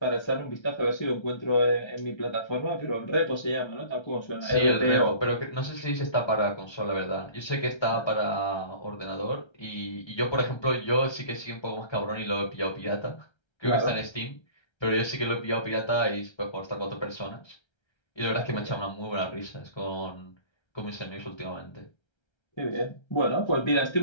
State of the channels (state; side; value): late; right; 1.3 ms